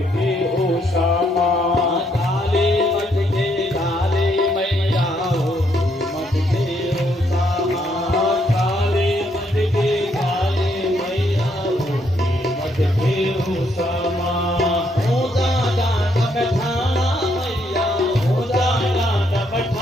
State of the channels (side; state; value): both; normal; correlation 0.73